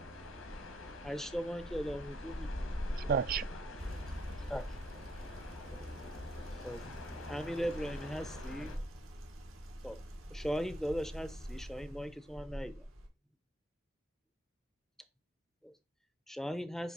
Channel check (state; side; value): normal; both; correlation 0.72